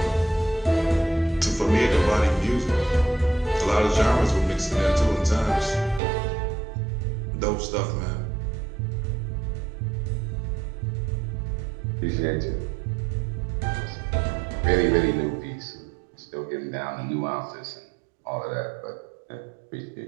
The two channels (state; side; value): drops out; left; at 6.0 s